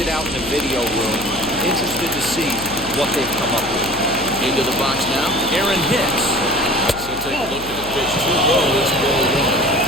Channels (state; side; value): noise; left; hum, 14 dB below the sound